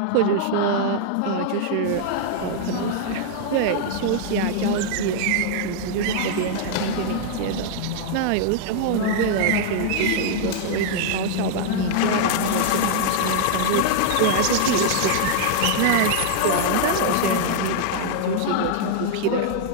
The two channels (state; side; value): different; both; correlation -0.01